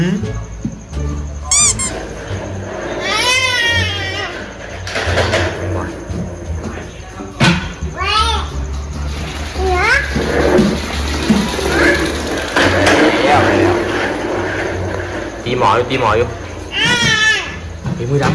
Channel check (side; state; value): both; identical; correlation 1.00